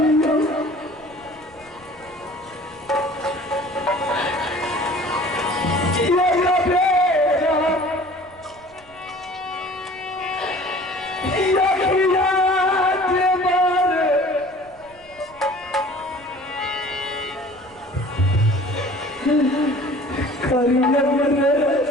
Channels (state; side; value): noise; left; rumble, 27 dB below the sound